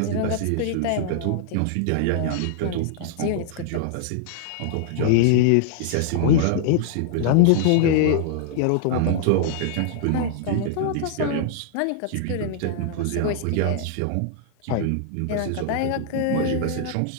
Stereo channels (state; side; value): different; both; correlation -0.01